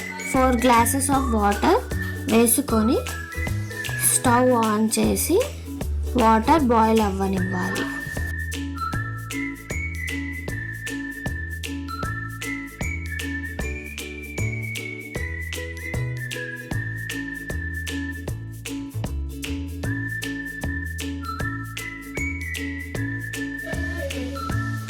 4 గ్లాసెస్ ఆఫ్ వాటర్ వేసుకొని స్టవ్ ఆన్ చేసి వాటర్ బాయిల్ అవ్వనివ్వాలి.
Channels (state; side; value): identical; both; correlation 1.00